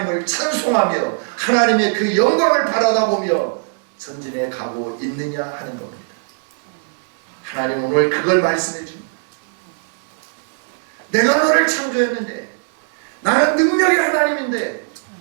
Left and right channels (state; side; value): silent; left; 66 dB below the other